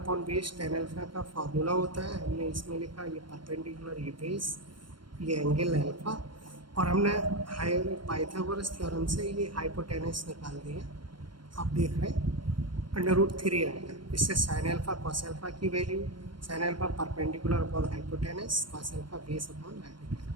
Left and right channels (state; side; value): late; left; 0.72 ms